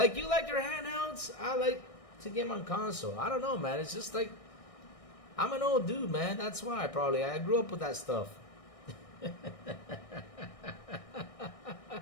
you like your handhelds, I like to game on console. I don't know, man. It's just like I'm an old dude, man. That's why I grew up with that stuff.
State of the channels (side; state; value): right; late; 1.6 ms